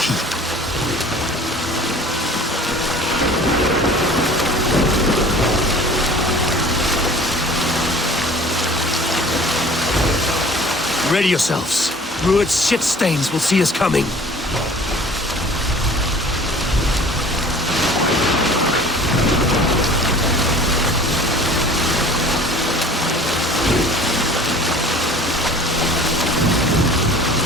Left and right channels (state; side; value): normal; both; correlation 0.46